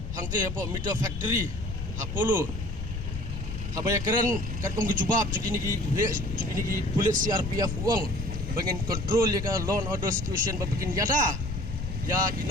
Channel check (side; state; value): left; noise; rumble, 5 dB below the sound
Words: hangte po meter factory hapolo habaya keren kat kong gijubab jugini ki pulit CRPF uang bangin control ya ka law and order situation babikin yada ya